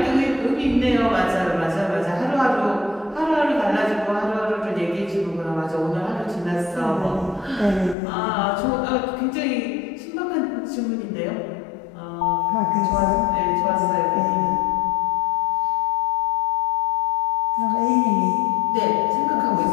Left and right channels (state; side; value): drops out; right; at 8.0 s